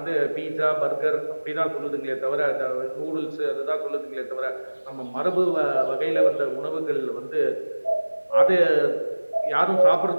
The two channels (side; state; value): both; inverted; correlation -1.00